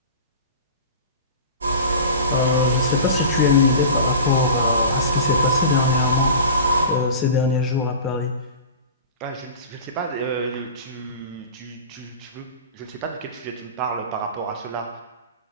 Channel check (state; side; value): inverted; both; correlation -0.35